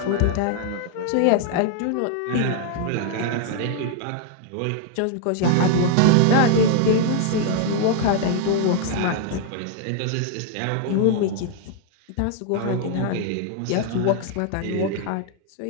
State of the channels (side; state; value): both; different; correlation 0.00